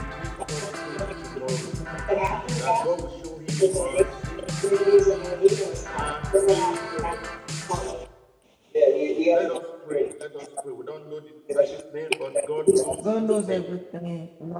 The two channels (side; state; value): both; identical; correlation 1.00